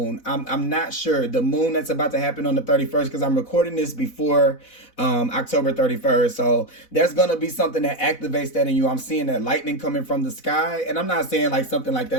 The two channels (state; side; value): late; right; 4.0 ms